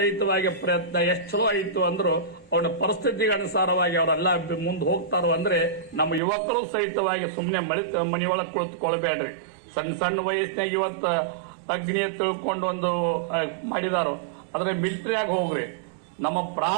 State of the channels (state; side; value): drops out; left; at 6.2 s